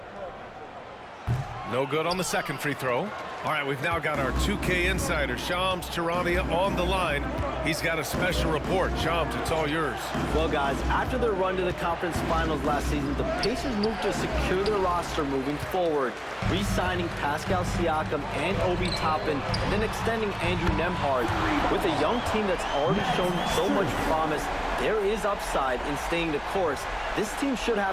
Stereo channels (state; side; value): identical; both; correlation 1.00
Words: No good on the second free throw. All right, we've now got our 2K insider, Shams Charania, on the line. He's got a special report. Shams, it's all yours. Well, guys, after their run to the conference finals last season, the Pacers moved to secure their roster moving forward, re-signing Pascal Siakam and Obi Toppin, and then extending Andrew Nembhard. With a young team that's already shown so much promise, there is upside in staying the course. This team should